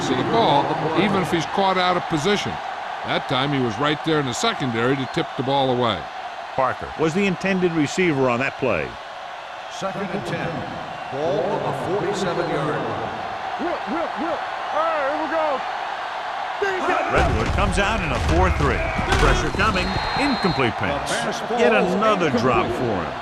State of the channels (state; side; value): identical; both; correlation 1.00